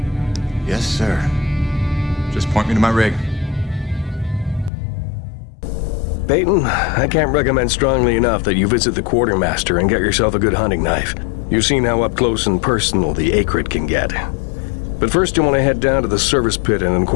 Yes, sir. Just point me to my rig. Peyton, I can't recommend strongly enough that you visit the Quartermaster and get yourself a good hunting knife. You've seen how up close and personal the Akrid can get. But first you want to head down to the service pit and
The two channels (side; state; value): right; drops out; at 4.7 s